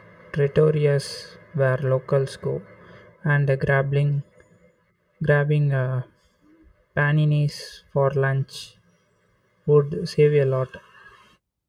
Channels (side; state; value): both; identical; correlation 1.00